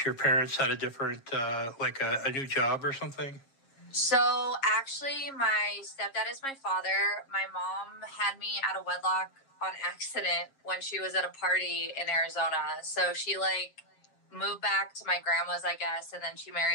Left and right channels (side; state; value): right; late; 7.4 ms